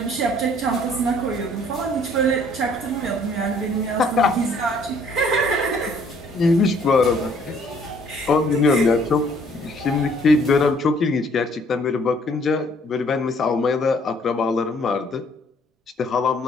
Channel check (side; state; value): both; normal; correlation 0.61